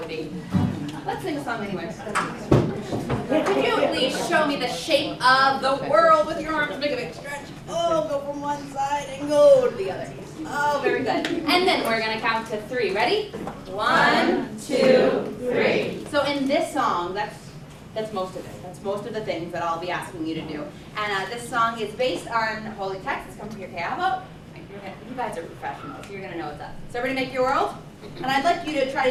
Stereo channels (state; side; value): identical; both; correlation 1.00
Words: be. Let's sing a song anyway. Can you please show me the shape of the world with your arms? Make a big stretch. Oh, go from one side and go to the other. Oh, very good. And then we're going to count to 3. Ready? 1, 2, 3. So in this song, that's most of it. That's most of the things that I'll be asking you to do. And this song is based on holy text. It's come from your Kayavo. You guys are professionals. You're going to know what's up. So everybody make your world. And I'd like you to try